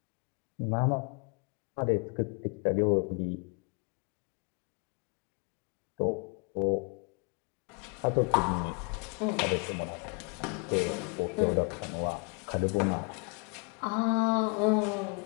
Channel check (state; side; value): quieter; right; 33.4 dB